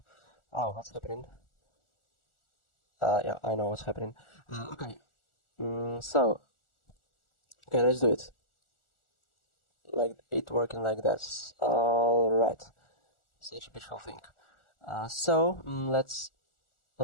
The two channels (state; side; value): late; right; 1.4 ms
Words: Oh, what's happening? Yeah, I know what's happening. Okay, so okay, let's do it. Like it working like this. All right, such a beautiful thing. So let's